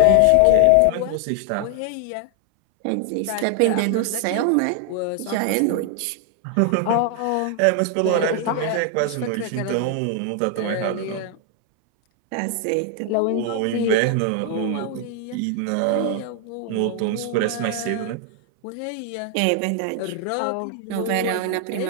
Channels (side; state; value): both; different; correlation 0.00